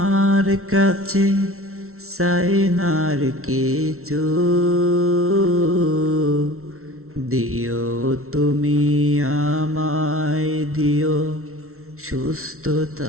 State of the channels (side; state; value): left; late; 0.63 ms